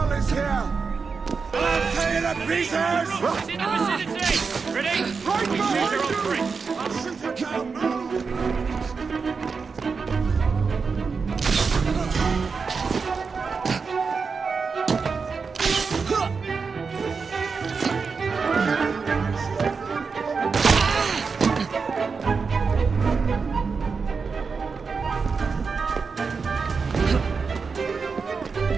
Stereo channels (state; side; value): quieter; left; 5.1 dB